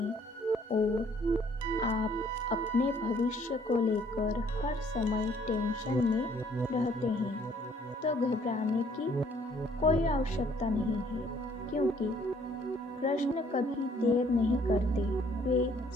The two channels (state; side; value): normal; both; correlation 0.62